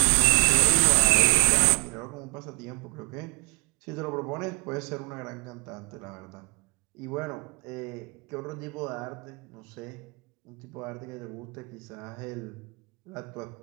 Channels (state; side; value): quieter; left; 29.9 dB